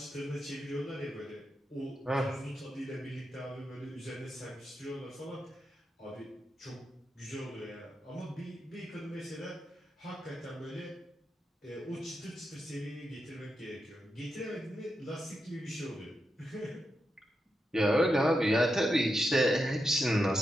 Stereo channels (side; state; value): both; normal; correlation 0.87